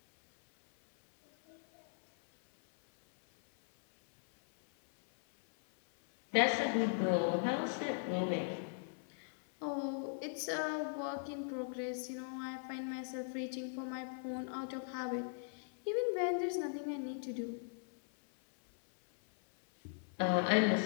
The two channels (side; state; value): right; silent; 52 dB below the other